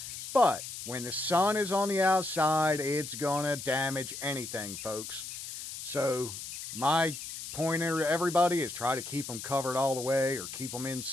But when the sun is on the outside, it's gonna damage anything, folks. So my pointer to everybody is try to keep them covered all the way, or keep them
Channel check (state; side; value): noise; left; hiss, 9 dB below the sound